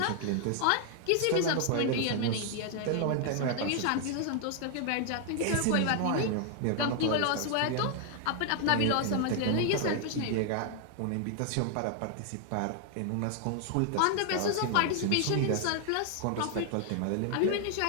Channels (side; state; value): both; different; correlation 0.00